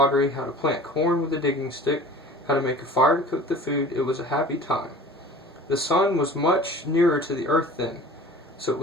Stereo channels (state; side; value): normal; both; correlation 0.43